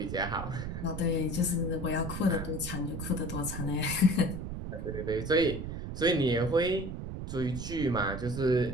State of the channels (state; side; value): noise; right; rumble, 6 dB below the sound